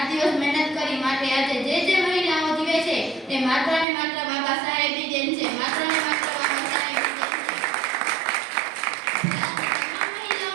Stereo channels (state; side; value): drops out; left; at 3.9 s